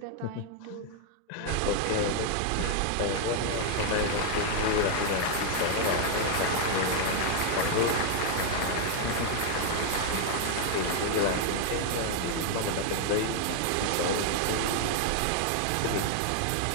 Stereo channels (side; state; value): both; different; correlation 0.00